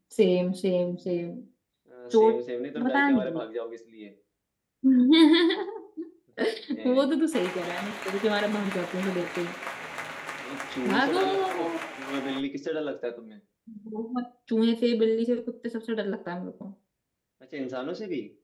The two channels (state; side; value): identical; both; correlation 1.00